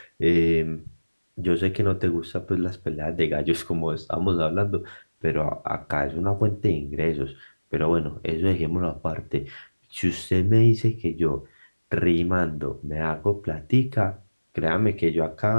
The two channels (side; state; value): both; inverted; correlation -1.00